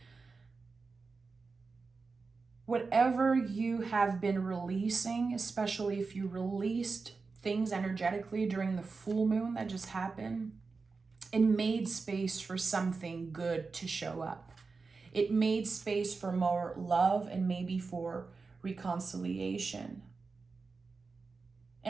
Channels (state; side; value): quieter; left; 4.4 dB